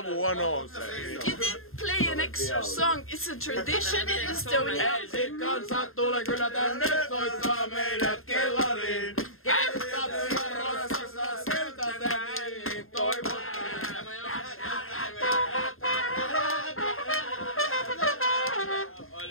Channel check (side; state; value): right; late; 0.61 ms